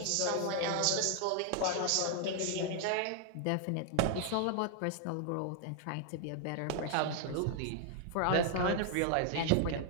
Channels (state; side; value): different; both; correlation 0.00